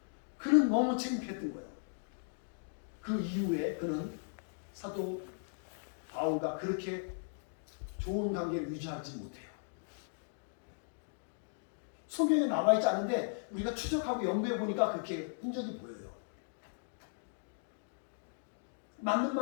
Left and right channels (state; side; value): silent; right; digital silence